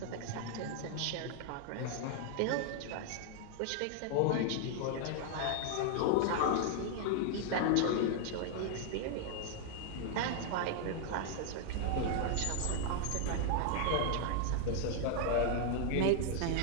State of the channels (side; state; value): both; different; correlation 0.00